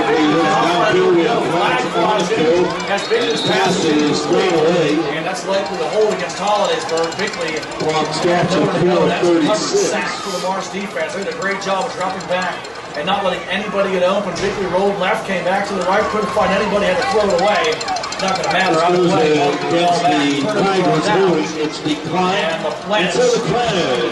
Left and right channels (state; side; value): identical; both; correlation 1.00